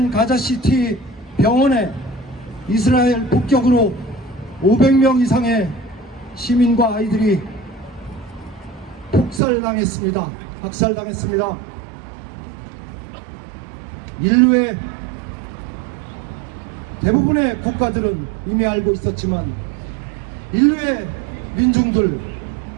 가자시티 병원에 이스라엘 폭격으로 500명 이상의 시민과 아이들이 학살당했습니다. 인류의 대부분의 국가들은 이미 알고 있었지만 인류의 민중들,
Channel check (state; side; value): drops out; left; at 9.4 s